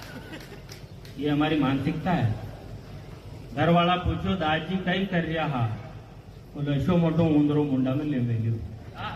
ये हमारी मानसिकता है। घर वाला पूछो दादाजी कई कर रहा हा, बोलो ऐसो मोटो ऊंदरो मुंडा में ले मिलियो,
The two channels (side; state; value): both; identical; correlation 1.00